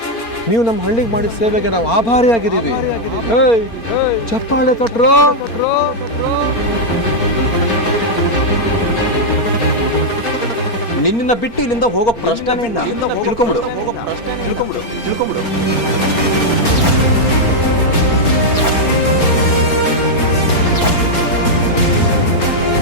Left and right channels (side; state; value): right; late; 4.3 ms